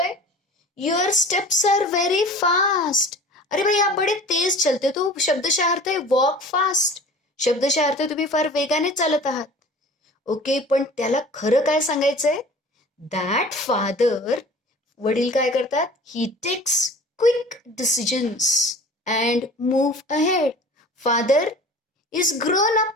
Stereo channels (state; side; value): normal; both; correlation 0.43